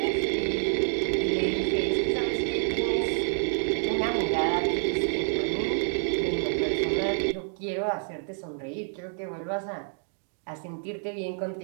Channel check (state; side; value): silent; left; digital silence